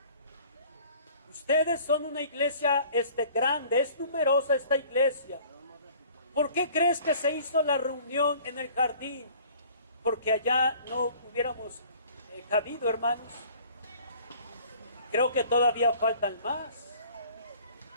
Ustedes son una iglesia grande, es numerosa esta iglesia. ¿Por qué crees que se hizo la reunión en el jardín? Porque allá no hubiéramos cabido, hermanos. Creo que todavía faltan más.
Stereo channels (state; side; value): inverted; both; correlation -0.51